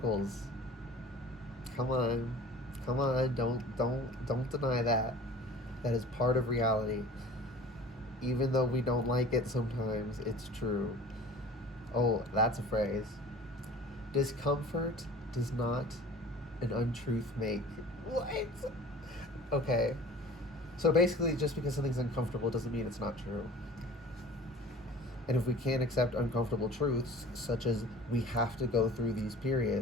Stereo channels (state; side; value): normal; both; correlation 0.44